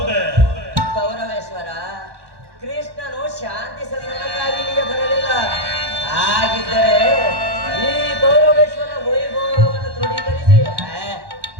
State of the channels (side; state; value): left; late; 1.1 ms